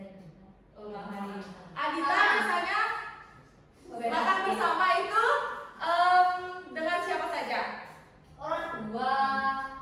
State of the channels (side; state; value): both; identical; correlation 1.00